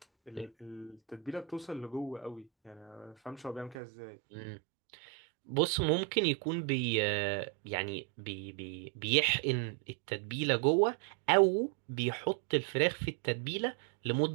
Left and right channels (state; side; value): drops out; left; at 3.8 s